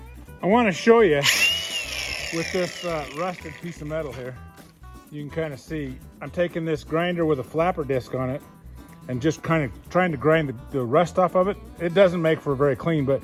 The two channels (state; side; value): identical; both; correlation 1.00